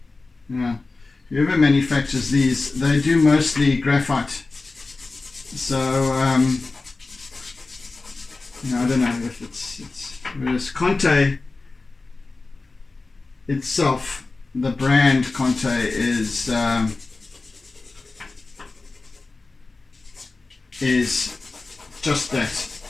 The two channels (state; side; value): quieter; right; 3.6 dB